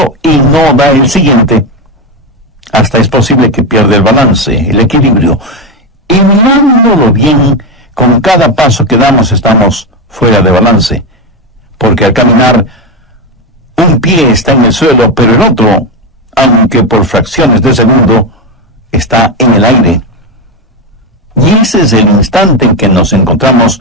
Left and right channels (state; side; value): normal; both; correlation 0.11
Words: y no da el siguiente, hasta es posible que pierda el balance, el equilibrio. Y mirándolo bien, con cada paso que damos estamos fuera de balance. Porque al caminar, un pie está en el suelo, pero el otro, aunque por fracciones de segundo, está en el aire. Y ese es el instante en que nos